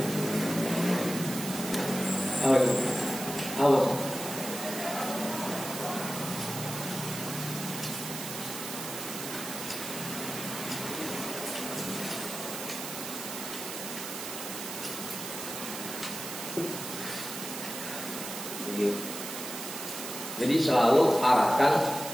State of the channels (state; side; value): noise; right; hiss, 7 dB below the sound